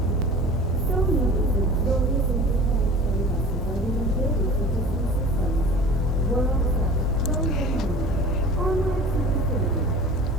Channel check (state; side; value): normal; both; correlation 0.41